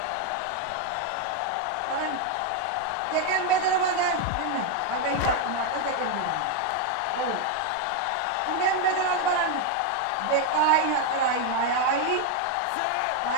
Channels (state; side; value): different; both; correlation 0.01